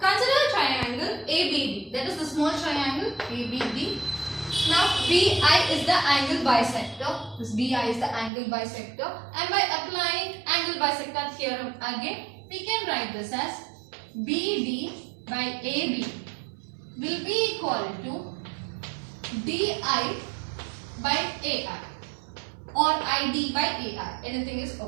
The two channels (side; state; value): left; drops out; at 8.3 s